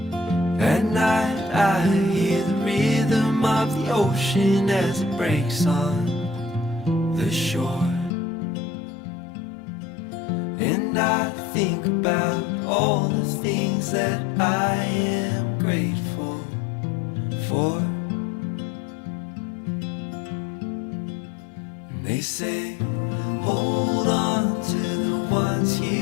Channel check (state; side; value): drops out; right; at 8.1 s